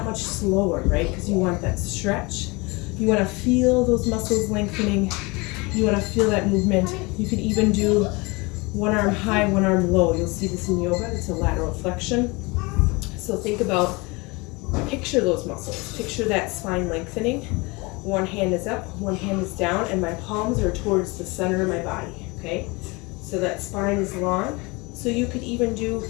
much slower, right? Because you want that stretch. You want to feel those muscles lengthening. You want to feel that movement. You could even do one arm high, one arm low. You'll see this in yoga. It's a lateral flexion. So think about, picture those muscles. Picture that spine lengthening. One hand is up, one hand is down, and my palms are towards the center of my body, okay? So that spine is long. So you could even do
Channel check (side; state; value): right; quieter; 26.1 dB